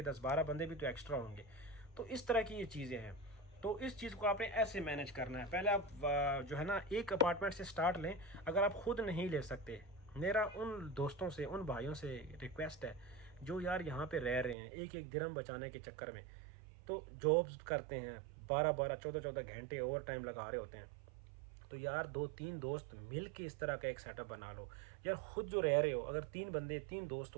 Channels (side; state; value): left; drops out; at 14.6 s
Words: 10-12 बंदे भी तो एक्स्ट्रा होंगे। तो इस तरह की ये चीज़ें हैं। तो इस चीज़ को आपने ऐसे मैनेज करना है। पहले आप जो है ना एक अपार्टमेंट से स्टार्ट लें। अगर आप खुद नहीं ले सकते, मेरा उन दोस्तों से, उन भाइयों से रिक्वेस्ट है जो यार यहाँ पे रह रहे हैं, एक एक दिरहम बचाने के चक्कर में, तो जॉब्स करते हैं, 12-12, 14-14 घंटे ओवर टाइम लगा रहे होते हैं। तो यार 2-3 दोस्त मिल के इस तरह का एक सेटअप बना लो। यार खुद जो रह रहे हो, अगर 3 बंदे, 3 दोस्त